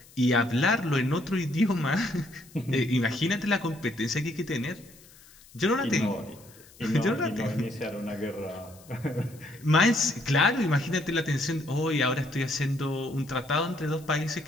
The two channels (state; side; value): noise; left; hiss, 24 dB below the sound